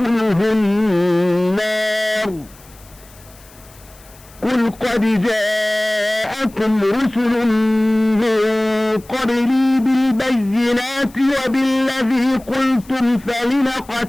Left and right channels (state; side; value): noise; left; hiss, 25 dB below the sound